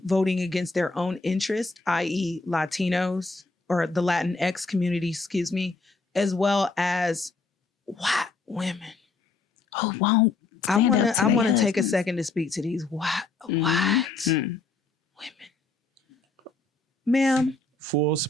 voting against their own interest, i.e. Latinos or the Latinx community, excuse me, as well as white women who won't. I want to take a second to speak to these white women. Ma'am. Full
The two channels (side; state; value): right; quieter; 3.8 dB